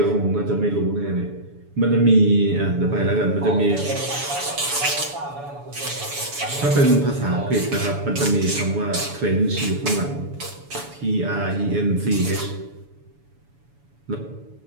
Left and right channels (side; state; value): left; late; 7.0 ms